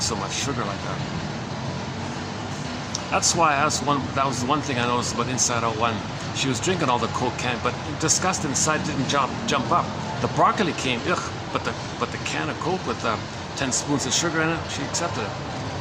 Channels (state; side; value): identical; both; correlation 1.00